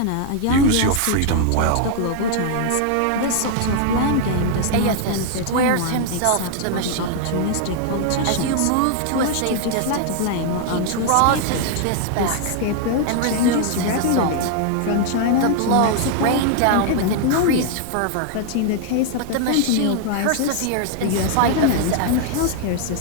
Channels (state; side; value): different; both; correlation 0.00